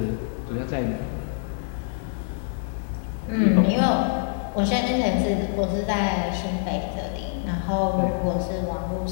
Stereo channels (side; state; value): right; silent; digital silence